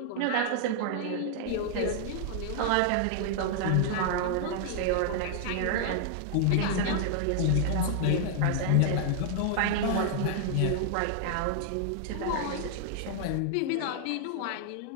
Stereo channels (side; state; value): both; different; correlation -0.01